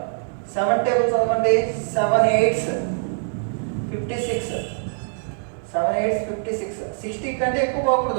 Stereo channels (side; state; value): left; silent; digital silence